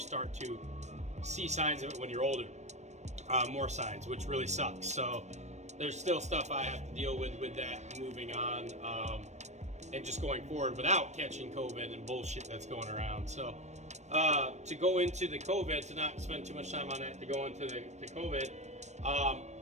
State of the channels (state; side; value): late; left; 0.33 ms